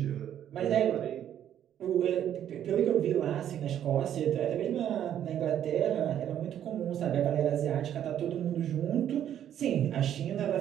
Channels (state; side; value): quieter; left; 10.4 dB